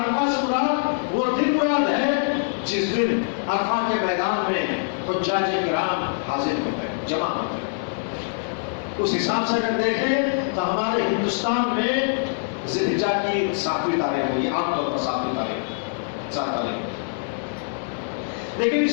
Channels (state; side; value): silent; right; 55 dB below the other